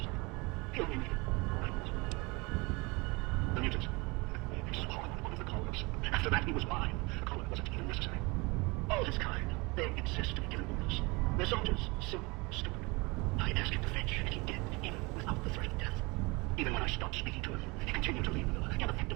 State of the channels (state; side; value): quieter; left; 26.1 dB